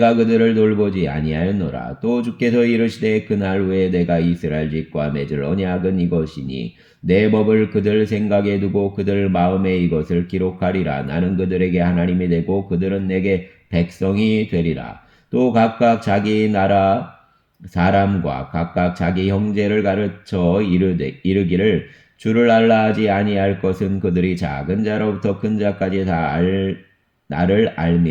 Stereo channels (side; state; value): both; identical; correlation 1.00